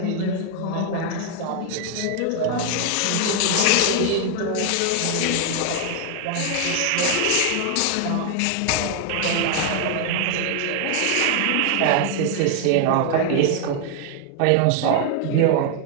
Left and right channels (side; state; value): both; different; correlation 0.00